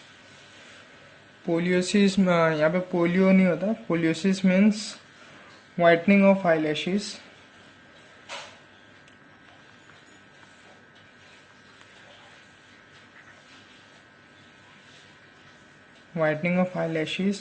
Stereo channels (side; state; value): both; identical; correlation 1.00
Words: पोलियोसिस यहाँ पे polio नहीं होता. Poliosis means whitening of eyelashes. Whitening of